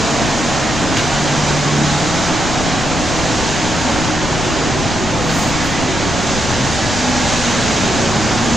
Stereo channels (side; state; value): left; noise; rumble, 6 dB below the sound